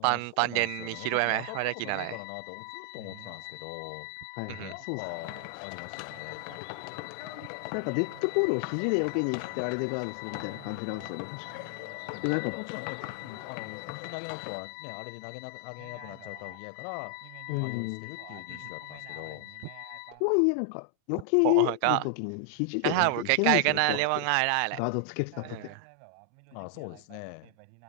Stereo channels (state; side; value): different; both; correlation 0.00